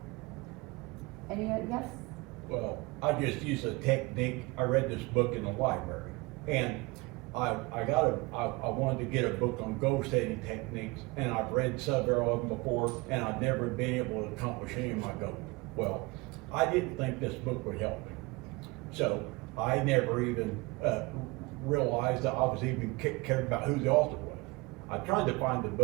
Yes? Well, I just use a technique. I read this book in the library, and I wanted to get a book on goal setting techniques, and I've read several of them before, and I've never been able to accomplish any of my goals. Well, I didn't think this book would help me, so I never even realized that I was even cared about who the author was. I tried to find the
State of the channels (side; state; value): left; quieter; 24.9 dB